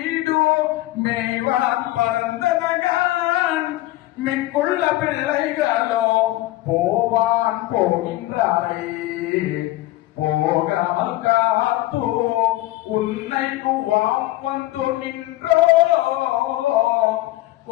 மேய்வான் பரந்தனகான் மிக்குள்ள பிள்ளைகளோ போவான் போகின்றாரே போகாமல் காத்தோ உன்னை குவாம் வந்து நின்றோ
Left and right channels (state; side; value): quieter; right; 17.1 dB